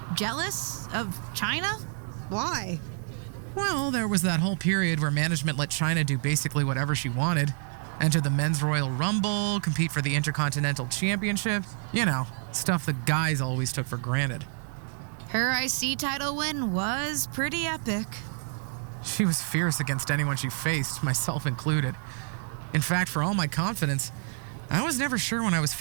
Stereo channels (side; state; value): left; silent; 59 dB below the other